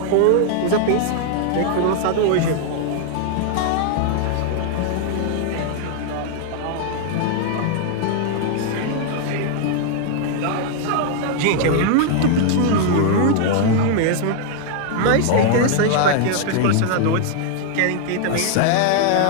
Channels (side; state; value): both; different; correlation 0.00